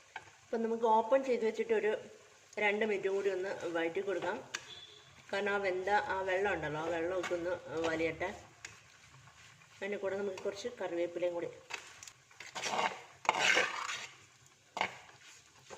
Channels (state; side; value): identical; both; correlation 1.00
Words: അപ്പം നമുക്ക് ഓപ്പൺ ചെയ്ത് വെച്ചിട്ട് ഒരു 2 മിനിറ്റ് കൂടി ഒന്ന് വഴറ്റി കൊടുക്കാം. കാരണം ആ വെള്ളം ഉണ്ടല്ലോ, ആ വെള്ളമൊക്കെ ഒന്ന് വലിയട്ടെ. അതിൻ്റെ കൂടെ നമുക്ക് കുറച്ച് കറിവേപ്പിലയും കൂടി.